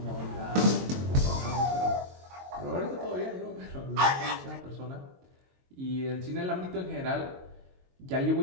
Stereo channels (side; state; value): left; late; 22 ms